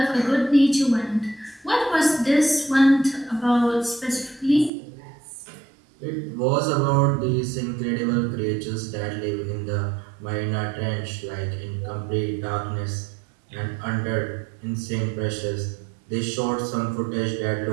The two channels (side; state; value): left; drops out; at 4.7 s